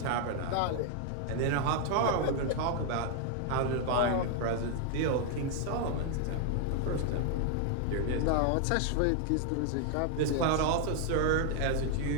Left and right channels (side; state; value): both; different; correlation 0.00